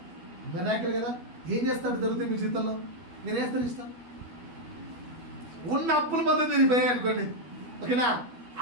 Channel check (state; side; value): late; left; 12 ms